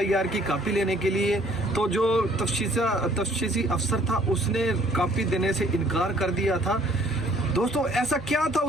की कॉपी लेने के लिए, तो जो तफ्तीशी अफसर था उसने कॉपी देने से इनकार कर दिया था। दोस्तों ऐसा क्या था,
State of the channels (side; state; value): both; normal; correlation 0.59